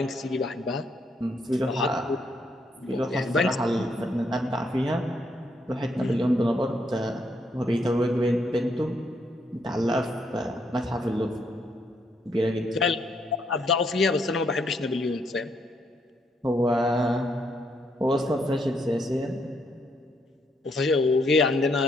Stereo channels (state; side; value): normal; both; correlation 0.74